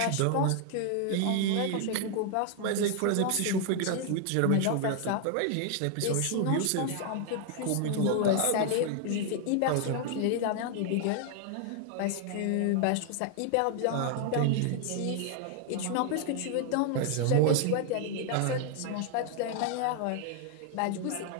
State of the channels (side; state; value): both; different; correlation 0.00